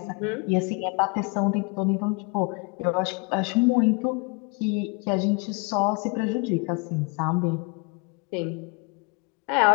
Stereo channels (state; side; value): quieter; right; 29.8 dB